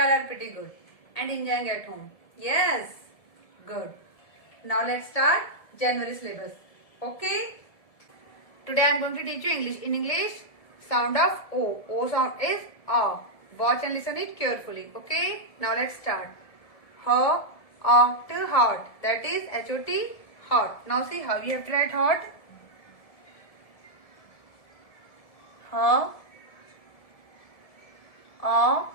are pretty good and enjoying at home. Yes, good. Now let's start January syllabus. Okay? Today I am going to teach you English. In English, sound of O. O sound is A. Watch and listen it carefully. Okay? Now let's start. Hot, hot. That is H-O-T, hot. Now see how you have to write hot. Hot.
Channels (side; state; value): right; late; 1.7 ms